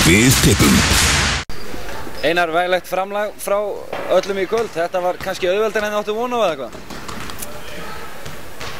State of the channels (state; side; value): identical; both; correlation 1.00